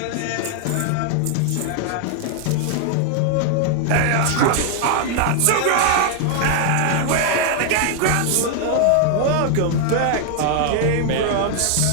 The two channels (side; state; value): both; different; correlation 0.00